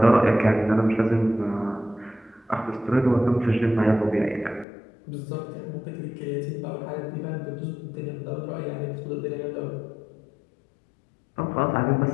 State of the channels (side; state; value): right; drops out; at 4.7 s